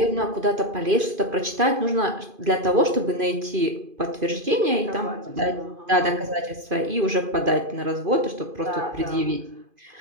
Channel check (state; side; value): late; left; 2.5 ms